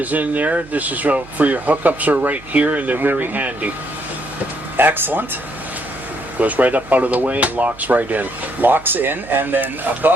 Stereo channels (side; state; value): right; noise; hum, 22 dB below the sound